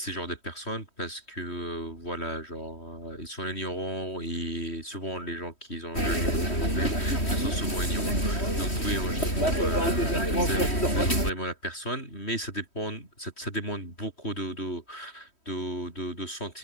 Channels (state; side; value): late; right; 3.1 ms